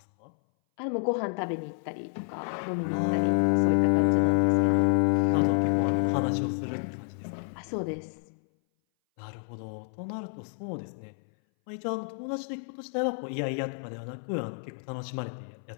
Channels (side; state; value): right; silent; 59 dB below the other